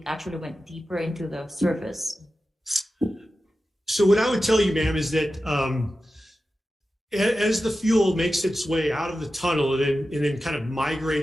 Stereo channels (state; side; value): normal; both; correlation 0.93